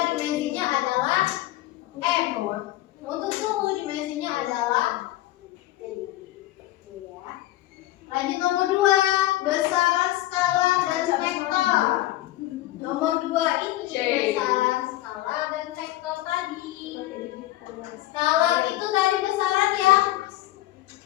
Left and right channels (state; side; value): quieter; right; 16.0 dB